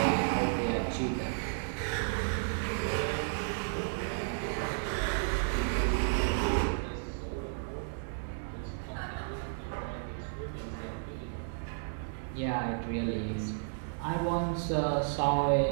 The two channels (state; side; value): silent; left; digital silence